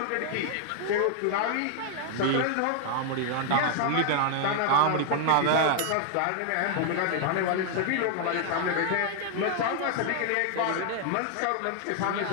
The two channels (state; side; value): different; both; correlation 0.00